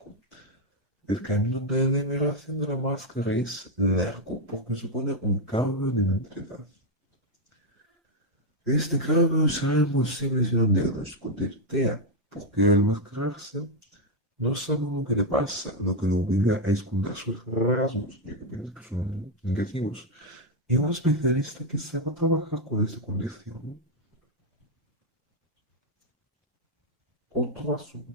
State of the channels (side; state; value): both; normal; correlation 0.03